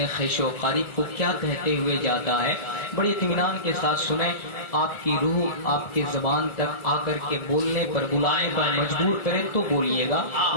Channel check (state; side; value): late; right; 1.3 ms